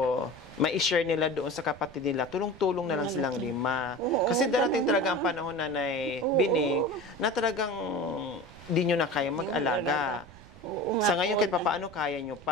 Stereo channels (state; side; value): noise; right; rumble, 20 dB below the sound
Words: mai-share nila doon sa kapatid nila, tulong-tulong na lang silang 5. Kasi darating talaga ang panahon, Nanay Bining, na talagang di nyo na kaya mag-alaga. Sa ngayon, kahit papaano kaya nyo